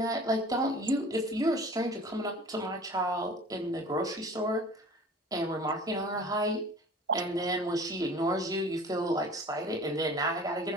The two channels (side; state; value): both; normal; correlation 0.44